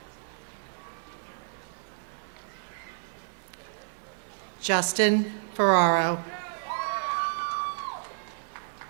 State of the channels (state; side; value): silent; left; digital silence